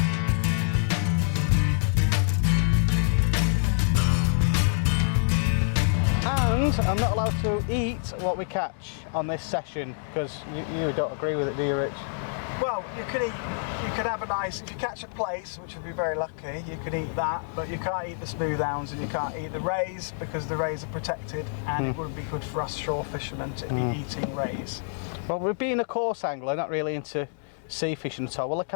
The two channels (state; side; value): silent; right; digital silence